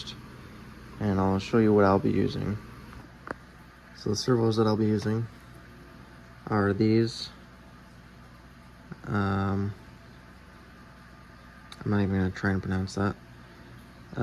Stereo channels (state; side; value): identical; both; correlation 1.00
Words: and I'll show you what I'll be using. So the servos that I'll be using are these. I'm not even gonna try and pronounce that.